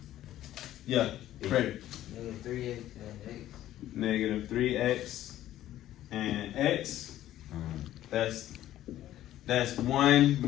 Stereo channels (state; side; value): quieter; right; 13.3 dB